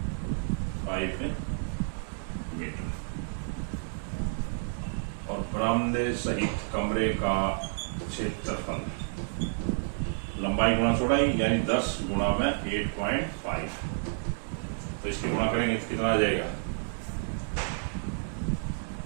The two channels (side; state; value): left; silent; digital silence